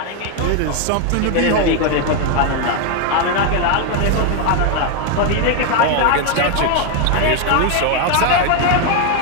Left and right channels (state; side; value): different; both; correlation 0.01